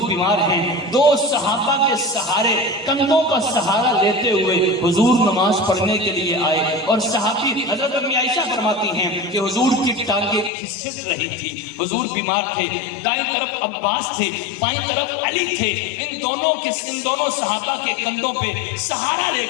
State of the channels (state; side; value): drops out; right; at 10.5 s